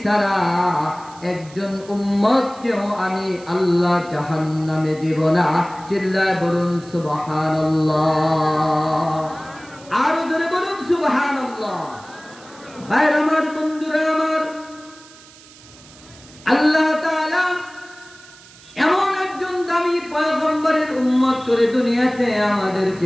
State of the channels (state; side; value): noise; right; hiss, 22 dB below the sound